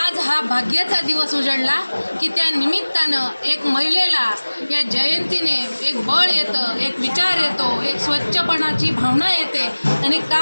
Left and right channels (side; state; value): both; inverted; correlation -1.00